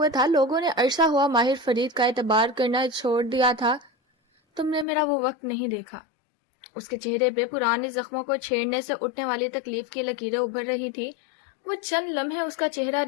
تھا. لوگوں نے عرصہ ہوا ماہر فرید کا اعتبار کرنا چھوڑ دیا تھا. تم نے میرا وہ وقت نہیں دیکھا. اس کے چہرے پہ پرانے زخموں کو چھیڑنے سے اٹھنے والی تکلیف کی لکیریں ابھر رہی تھی. وہ چند لمحے اس کا چہرہ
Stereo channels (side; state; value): right; drops out; at 4.9 s